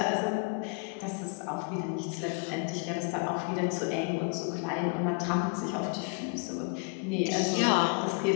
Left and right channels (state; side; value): quieter; right; 35.9 dB